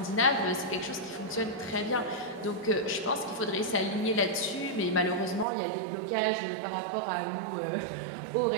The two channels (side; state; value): left; drops out; at 5.5 s